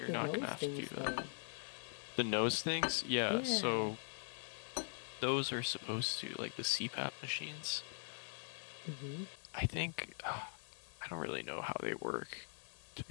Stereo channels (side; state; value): right; silent; digital silence